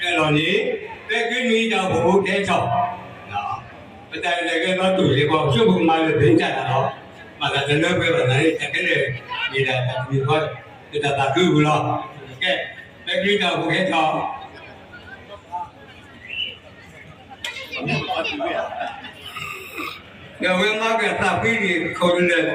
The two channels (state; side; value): identical; both; correlation 1.00